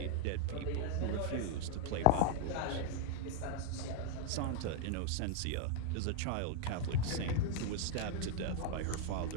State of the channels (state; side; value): different; both; correlation 0.00